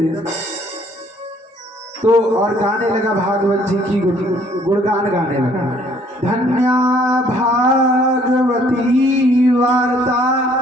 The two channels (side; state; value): both; normal; correlation 0.61